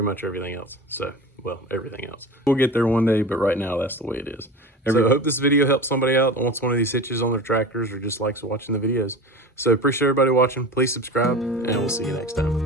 much everything else. So, well, everything else. We'll get there one day, but right now that's the way it is. So I hope this video helps somebody out that wants one of these hitches on their tractors or just likes watching the videos. So appreciate everybody watching. Please subscribe, and we'll see you next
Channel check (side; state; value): both; normal; correlation 0.32